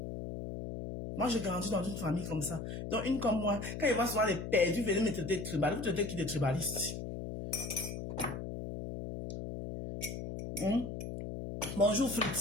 Moi, j'ai grandi dans une famille comme ça. Donc, une comme moi, quand il va souvent les perdus, venez me traiter de tribaliste. Vous traitez qui de tribaliste? Bonjour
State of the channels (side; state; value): left; noise; hum, 6 dB below the sound